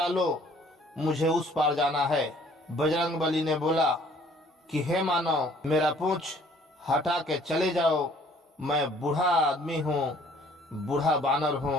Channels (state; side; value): normal; both; correlation 0.58